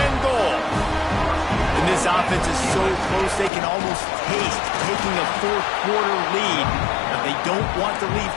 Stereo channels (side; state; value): right; drops out; at 3.5 s